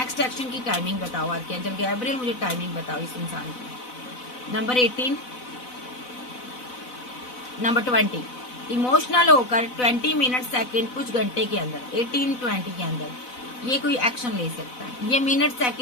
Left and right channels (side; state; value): right; late; 4.0 ms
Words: एक्शन की टाइमिंग बताओ आर्कएंजल गैब्रिएल, मुझे टाइमिंग बताओ इस इंसान की। नंबर 18, नंबर 20, इमोशनल होकर 20 मिनट सेकंड कुछ घंटे के अंदर, 18-20 के अंदर ये कोई एक्शन ले सकता है। ये मिनट